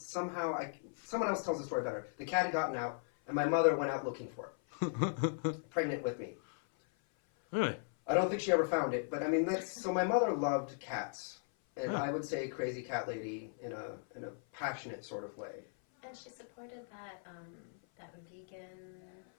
someone else tells the story better. The cat had gotten out, and my mother went out looking for it, pregnant with me. Really? I don't think she ever found it, but I mean so. My mother loved cats, and I would say crazy cat lady in a passionate sort of way. And she supported that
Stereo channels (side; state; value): right; silent; 53 dB below the other